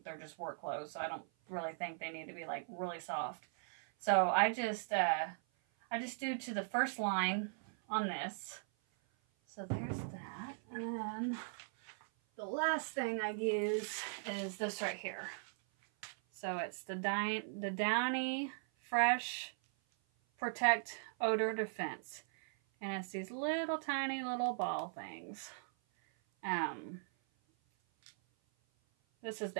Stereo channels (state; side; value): silent; left; 52 dB below the other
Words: they're just work clothes, so I don't really think they need to be, like, really soft. So I just do to the first line on this. So there's that. And then the last thing I use is this right here. So it's the Downy Fresh Protect Odor Defense. And it's these little tiny little ball things. This is